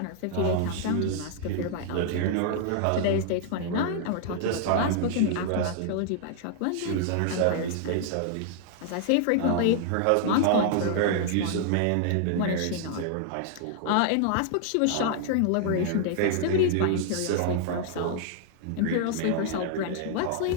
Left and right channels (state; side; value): different; both; correlation -0.01